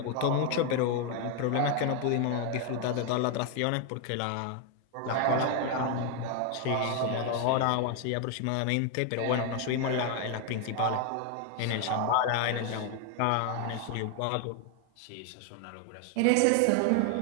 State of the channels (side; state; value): both; different; correlation 0.01